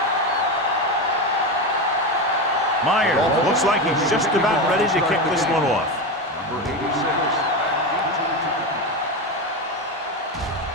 Myers looks like he's just about ready to kick this one off. Number 86.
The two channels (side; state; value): both; normal; correlation 0.17